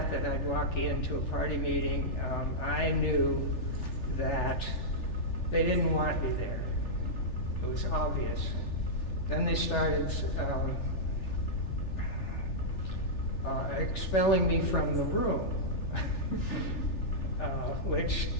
I'd walk into a party meeting, I knew that they didn't want me there. It was obvious. Then they started expelling me from the room, which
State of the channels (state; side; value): late; right; 3.4 ms